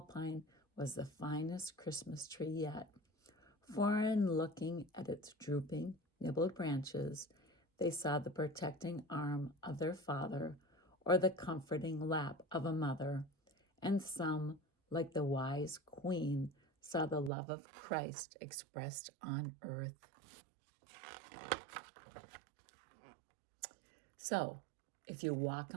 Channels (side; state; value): left; drops out; at 17.3 s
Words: was the finest Christmas tree yet. For in looking at its drooping, nibbled branches, they saw the protecting arm of their father or the comforting lap of a mother, and some, like the wise queen, saw the love of Christ expressed on earth. So, if you walk